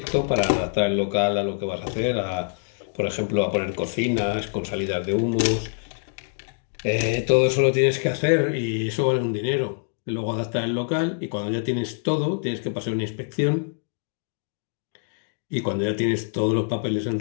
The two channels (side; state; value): right; silent; digital silence